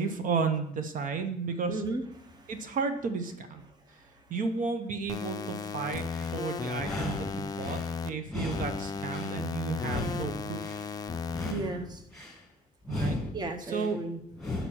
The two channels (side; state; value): both; normal; correlation 0.42